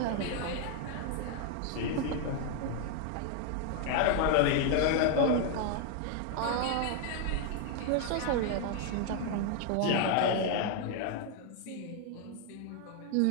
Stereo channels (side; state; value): both; different; correlation 0.00